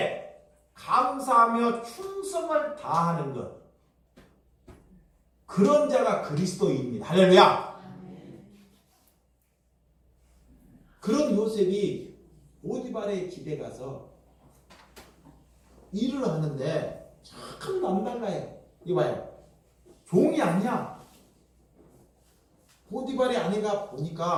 감사하며 충성을 다하는 것, 그런 자가 그리스도입니다. 할렐루야. 그런 요셉이 보디발의 집에 가서 일을 하는데 참 남달라요. 이봐요, 종이 아니야. 보디발의 아내가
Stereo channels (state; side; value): identical; both; correlation 1.00